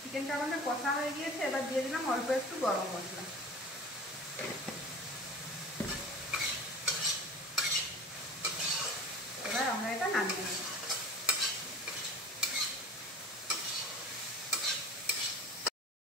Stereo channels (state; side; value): normal; both; correlation 0.38